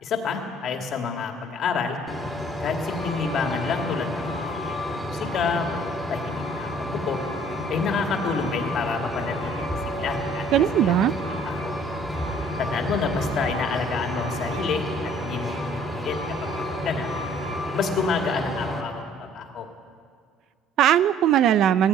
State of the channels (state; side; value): normal; both; correlation 0.56